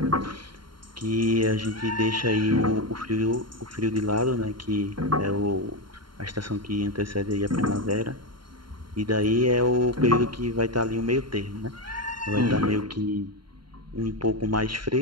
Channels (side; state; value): left; late; 0.72 ms